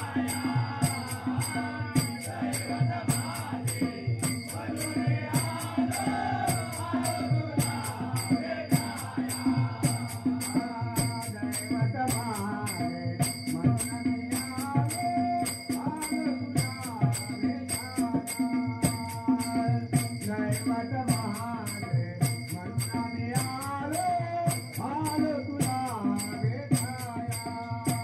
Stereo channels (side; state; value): both; identical; correlation 1.00